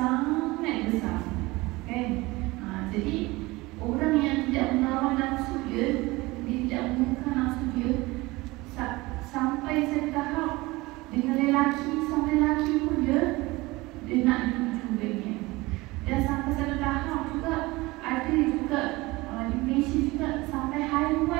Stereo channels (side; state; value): left; quieter; 21.5 dB